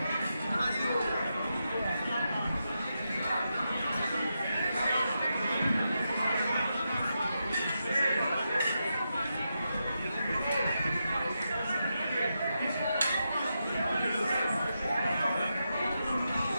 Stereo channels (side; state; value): both; inverted; correlation -0.86